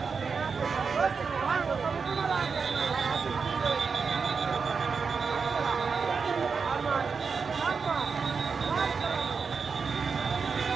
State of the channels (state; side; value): quieter; left; 5.4 dB